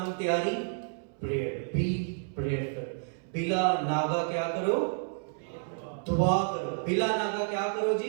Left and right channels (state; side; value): silent; left; 58 dB below the other